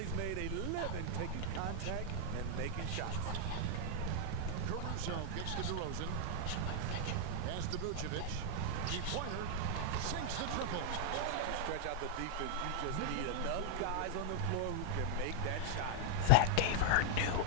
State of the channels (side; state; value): both; different; correlation 0.00